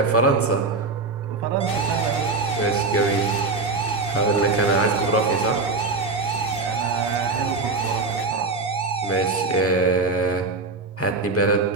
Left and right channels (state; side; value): quieter; left; 3.8 dB